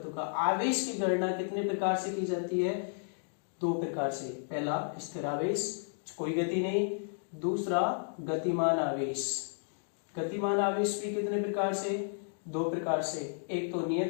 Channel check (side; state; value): right; silent; digital silence